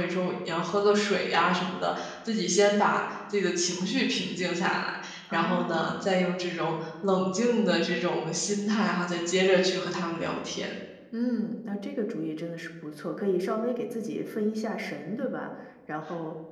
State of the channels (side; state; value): both; identical; correlation 1.00